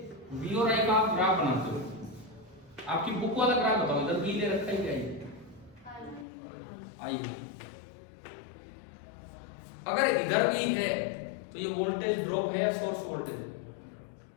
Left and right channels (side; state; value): right; drops out; at 6.2 s